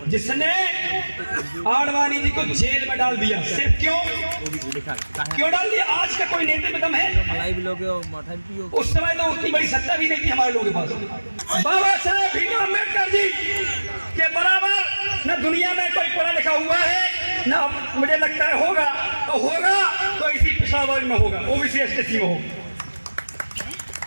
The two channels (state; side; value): inverted; both; correlation -1.00